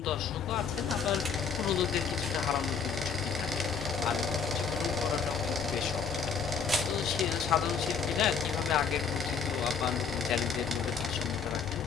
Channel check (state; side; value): quieter; right; 6.0 dB